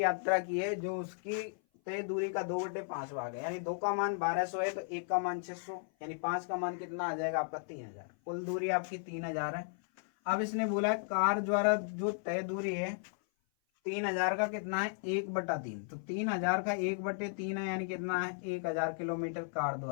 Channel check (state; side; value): silent; right; 54 dB below the other